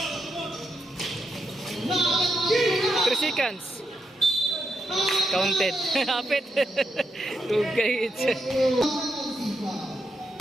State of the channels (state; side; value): normal; both; correlation 0.83